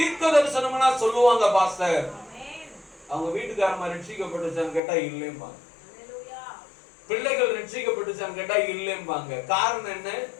தரிசனம்னா சொல்லுவாங்க, பாஸ்டர் அவங்க வீட்டுக்காரமா ரட்சிக்கப்பட்டுச்சான்னு கேட்டா இல்லைம்பாங்க, பிள்ளைகள் ரட்சிக்கப்பட்டுச்சான்னு கேட்டா இல்லைம்பாங்க. காரணம் என்ன?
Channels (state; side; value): drops out; right; at 4.8 s